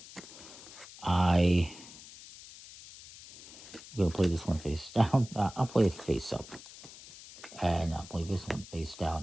I'm going to play this one face down. I'll play it face up. And I'll play this one face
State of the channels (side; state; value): left; noise; hiss, 17 dB below the sound